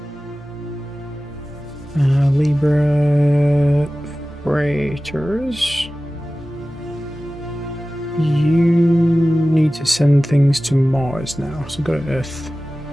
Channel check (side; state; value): both; normal; correlation 0.96